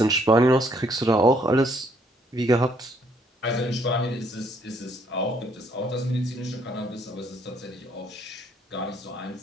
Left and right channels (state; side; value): normal; both; correlation 0.67